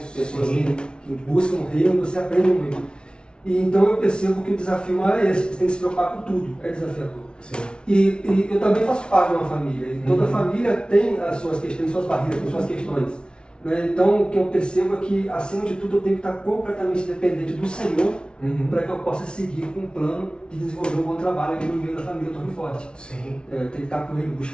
pessoas que buscam o reino, você aprende muito. E então eu percebo que o desafio maior é esse, você tem que se preocupar com tudo, é desafiador. Sim. E eu também faço parte de uma família, e toda família tem as suas questões, suas barreiras, tem suas questões. Né? Então o que eu percebo é que, acima de tudo, eu tenho que estar completamente dependente do Senhor para que eu possa seguir com um plano de desenvolver um bom trabalho aqui no meio da família Torre Forte. Sim. Tem que estar com ele,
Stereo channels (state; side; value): late; right; 0.056 ms